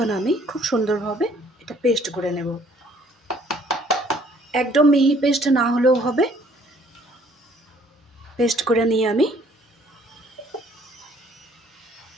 আমি খুব সুন্দরভাবে এটা পেস্ট করে নেব। একদম মিহি পেস্ট না হলেও হবে, পেস্ট করে নিয়ে আমি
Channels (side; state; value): both; normal; correlation 0.60